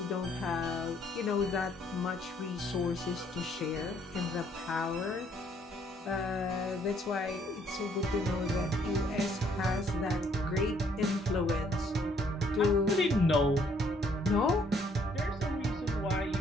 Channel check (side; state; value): both; normal; correlation 0.66